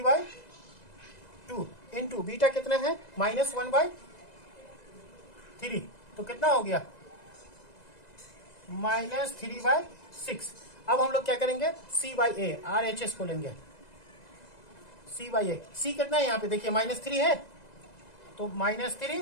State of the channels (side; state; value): right; late; 2.0 ms